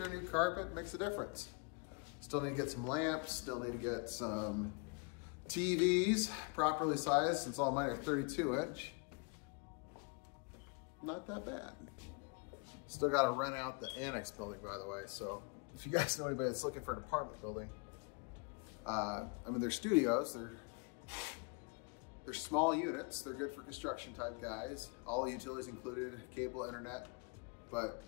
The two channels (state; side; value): quieter; right; 33.7 dB